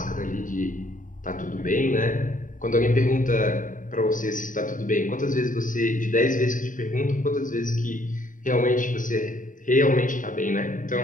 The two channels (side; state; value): right; late; 0.38 ms